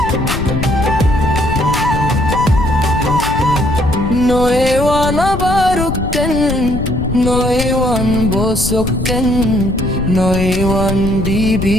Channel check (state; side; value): noise; left; rumble, 5 dB below the sound